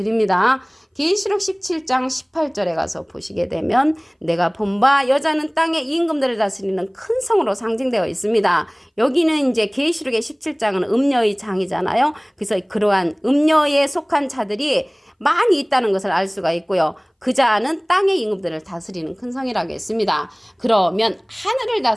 계시록 17장 18절에 가서 보시게 되면 내가 본 바 여자는 땅의 임금들을 다스리는 큰 성으로 상징되어 있습니다. 여기는 이제 계시록의 17장은 음녀의 장이잖아요. 그래서 그러한 음녀에 속한 자들이 많이 있다는 것을 알 수가 있고요. 그 자는 땅의 임금들을 다스리는 큰 성이라고 했습니다. 그러면 하늘을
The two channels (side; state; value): both; identical; correlation 1.00